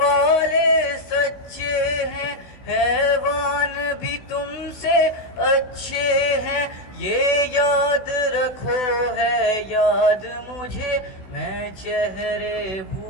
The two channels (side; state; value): right; late; 16 ms